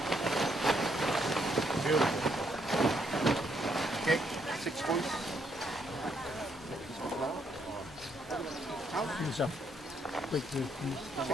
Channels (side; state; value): both; normal; correlation 0.73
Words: Beautiful. Okay, 6 points. Yourself. Wait,